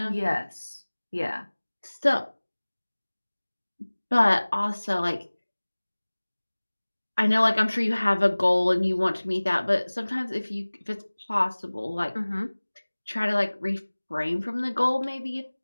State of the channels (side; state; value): both; inverted; correlation -1.00